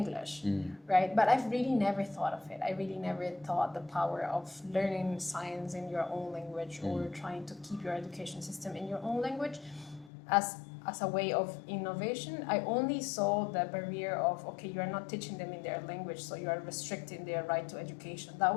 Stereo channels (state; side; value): drops out; right; at 10.1 s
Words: right? But I've really never thought of it. I really never thought the power of learning science in your own language or trying to keep your education system in your own language as a way of innovation. I only saw the barrier of, okay, you are not teaching them in their language, so you are restricting their right to education. That